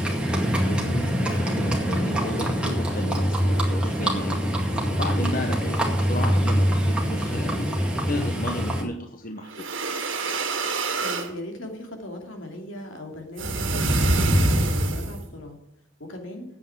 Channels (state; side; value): normal; both; correlation 0.77